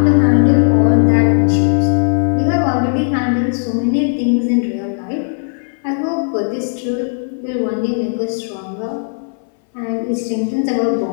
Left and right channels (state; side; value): silent; right; 63 dB below the other